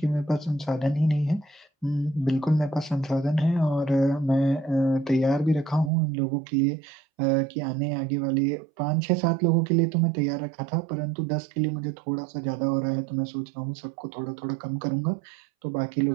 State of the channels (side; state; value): left; drops out; at 5.9 s